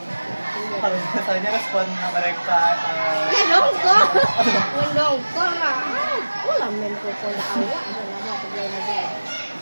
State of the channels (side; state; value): both; inverted; correlation -1.00